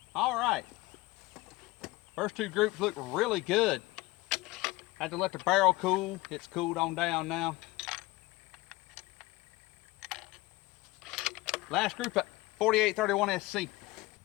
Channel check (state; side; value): quieter; right; 20.3 dB